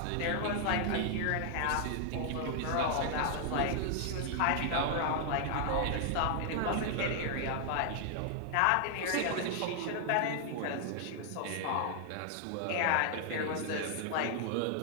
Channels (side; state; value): both; different; correlation 0.00